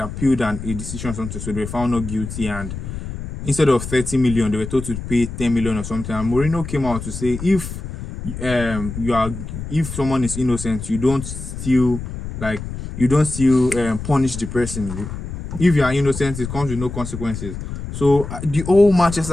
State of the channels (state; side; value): noise; left; rumble, 8 dB below the sound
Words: a decision or something, so they were found not guilty. And instead of 30 million, they were told to pay 10 million or something. And Mourinho came out to say, if someone is innocent, you don't still punish the person. If you are innocent, it comes with no consequences. So the whole